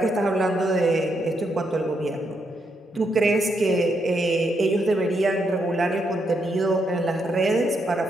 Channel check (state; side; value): normal; both; correlation 0.79